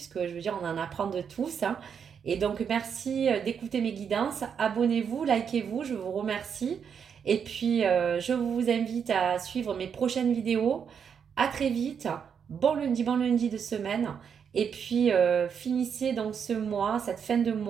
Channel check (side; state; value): left; quieter; 7.2 dB